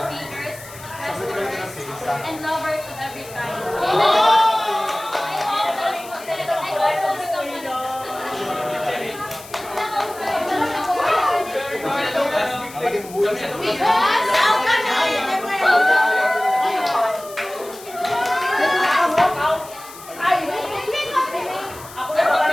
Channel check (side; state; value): left; noise; hiss, 17 dB below the sound